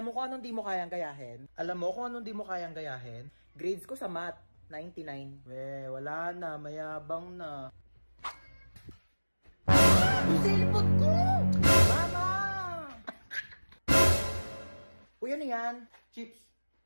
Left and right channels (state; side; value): inverted; both; correlation -1.00